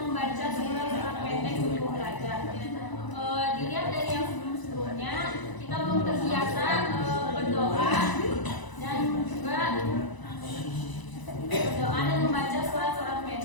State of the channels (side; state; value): right; late; 1.0 ms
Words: membaca surat-surat pendek sebelum belajar. Dilihat dari yang sebelum-sebelumnya, kita belum terbiasa berdoa dan juga berdoa dan membaca surat-surat